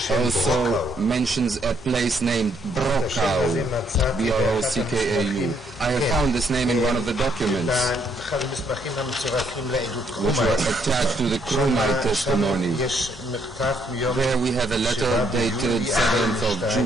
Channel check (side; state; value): both; normal; correlation 0.71